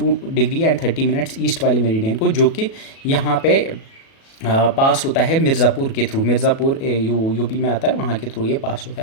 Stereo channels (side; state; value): right; late; 37 ms